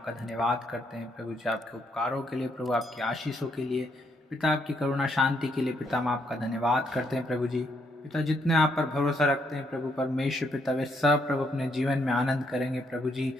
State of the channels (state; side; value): normal; both; correlation 0.74